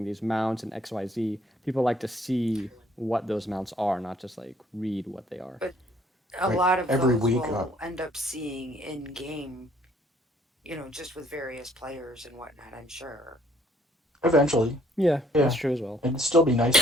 these mounts and XYZ." People like to see what those mounts are, not just like read what they are. But a Right. lot of Every those week. will end up seeing in game, just with various players and whatnot, I'm sure. Eventually, Yeah, that's yeah. true as well. It'd still be nice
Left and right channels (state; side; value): normal; both; correlation 0.62